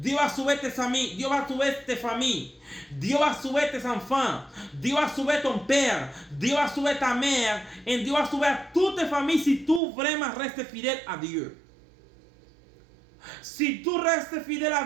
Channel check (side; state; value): left; drops out; at 9.8 s